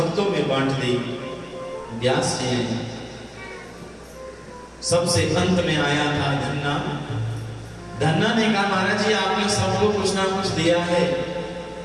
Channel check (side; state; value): both; identical; correlation 1.00